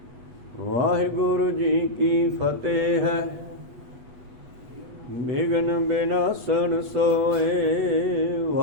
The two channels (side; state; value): left; late; 8.2 ms